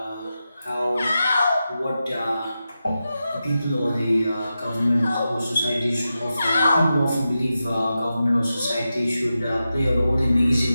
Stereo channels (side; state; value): both; inverted; correlation -0.91